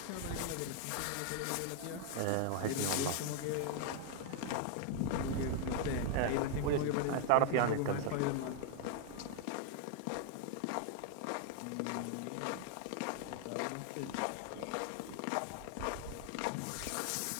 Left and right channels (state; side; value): different; both; correlation 0.00